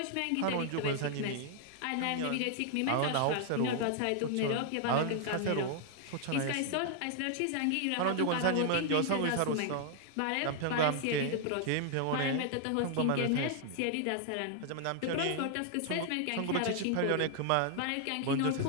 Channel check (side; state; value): both; different; correlation 0.00